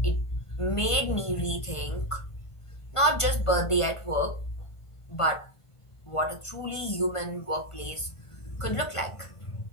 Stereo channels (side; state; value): right; late; 1.5 ms